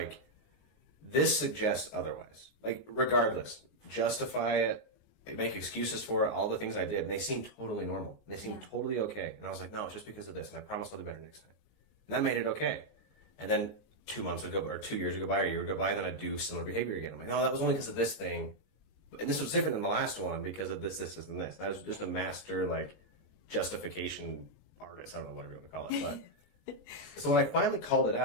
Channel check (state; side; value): late; right; 19 ms